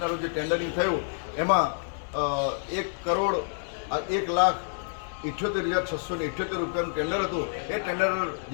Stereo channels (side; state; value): right; silent; digital silence